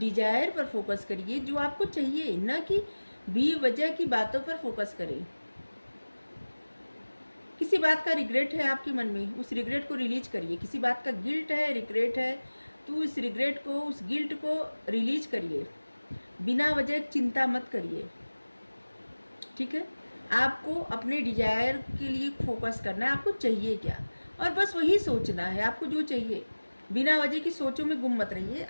पर फोकस करिए जो आपको चाहिए, न कि बेवजह की बातों पर फोकस करें। किसी बात का रिग्रेट है आपके मन में, उस रिग्रेट को रिलीज करिए। किसी बात का गिल्ट है, रिग्रेट है, तो उस रिग्रेट को, उस गिल्ट को रिलीज करिए। बिना वजह चिंता मत करिए, ठीक है। आपको अपने डिजायर के लिए फोकस करना है, आपको चाहिए क्या, और बस वही सोचना है आपको जो चाहिए। बिना वजह की सोचों में गुम मत रहिए,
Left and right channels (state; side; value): inverted; both; correlation -1.00